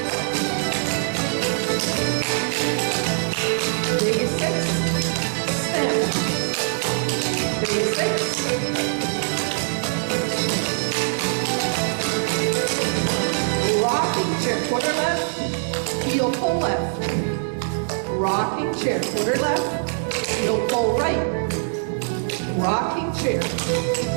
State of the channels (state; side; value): silent; left; digital silence